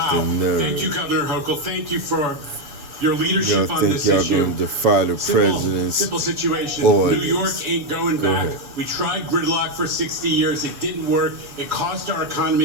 the nerve. Thank you, Governor Hochul. Thank you for your leadership Y'all on think this y'all issue. gonna defy the president's Simple situation. orders. New York ain't going Go back. ahead. We tried gridlock for 60 years. It didn't work. It cost our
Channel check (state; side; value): late; left; 7.2 ms